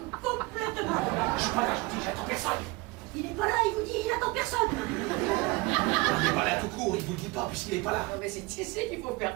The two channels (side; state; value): left; quieter; 23.7 dB